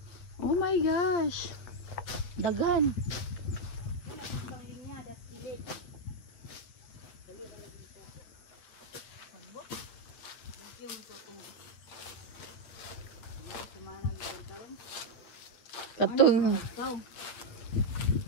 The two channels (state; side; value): late; right; 8.5 ms